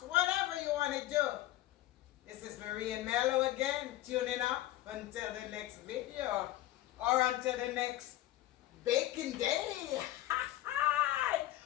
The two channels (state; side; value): quieter; right; 15.3 dB